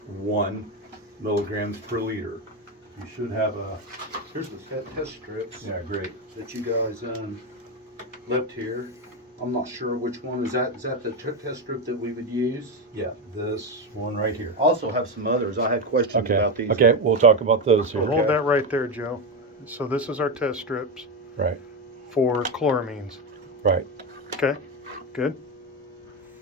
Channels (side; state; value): both; normal; correlation 0.12